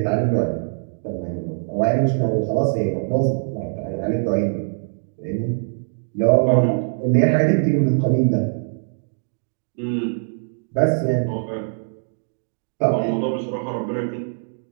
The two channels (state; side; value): silent; left; digital silence